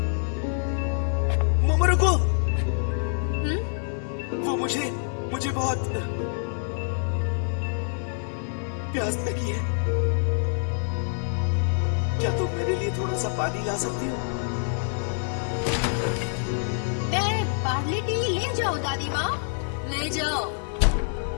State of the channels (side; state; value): right; silent; digital silence